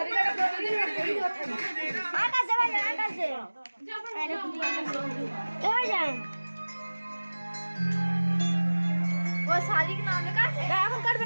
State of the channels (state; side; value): inverted; both; correlation -1.00